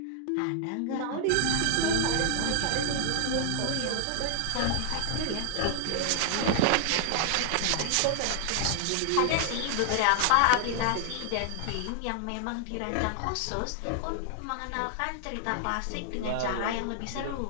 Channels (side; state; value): both; different; correlation 0.00